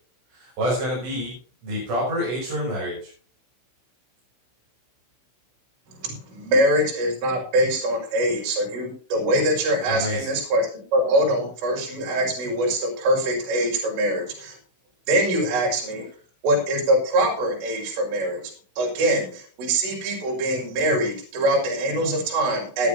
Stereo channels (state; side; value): late; left; 16 ms